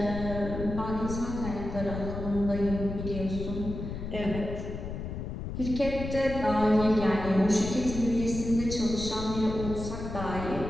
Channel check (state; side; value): noise; left; rumble, 6 dB below the sound